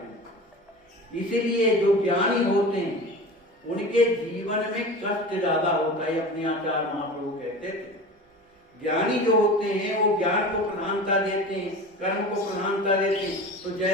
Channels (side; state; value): both; normal; correlation 0.34